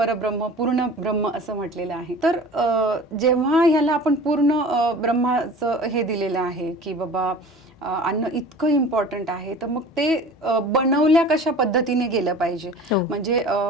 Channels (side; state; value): both; normal; correlation 0.41